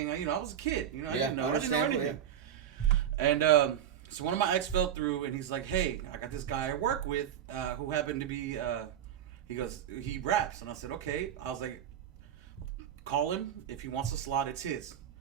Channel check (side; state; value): left; quieter; 9.8 dB